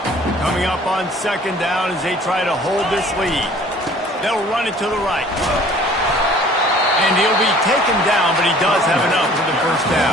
Coming up on second down as they try to hold this lead. They'll run it to the right. And he'll be taken down, but he does have enough for the first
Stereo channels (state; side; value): normal; both; correlation 0.52